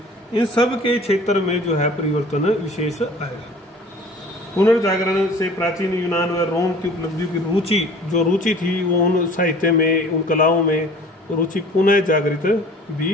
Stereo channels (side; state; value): both; normal; correlation 0.47